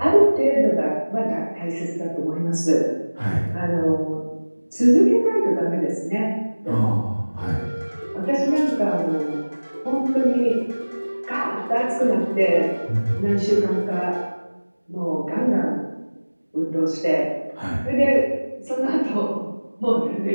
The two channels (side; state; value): both; inverted; correlation -1.00